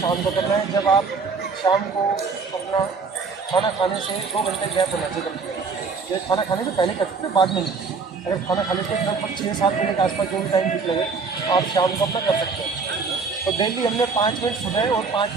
को करना है, जब आप शाम को अपना खाना खाने से 2 घंटे गैप होना चाहिए। ये खाना खाने से पहले कर सकते हैं, बाद में नहीं। अगर खाना खाने से लगभग 6-7 बजे के आसपास जो भी टाइम ठीक लगे आप शाम को अपना कर सकते हैं। तो डेली हमने 5 मिनट सुबह और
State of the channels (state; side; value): quieter; left; 4.8 dB